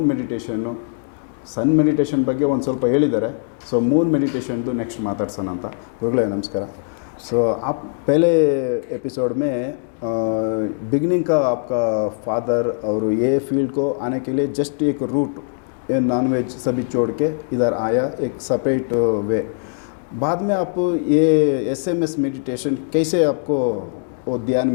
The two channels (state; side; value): silent; right; digital silence